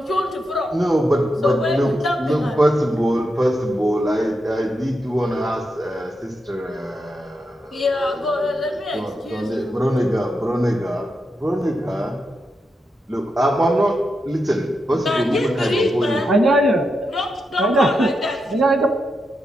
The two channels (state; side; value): normal; both; correlation 0.85